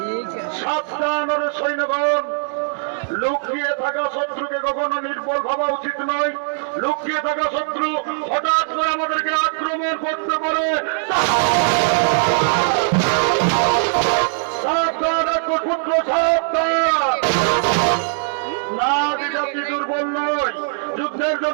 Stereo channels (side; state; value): left; silent; 62 dB below the other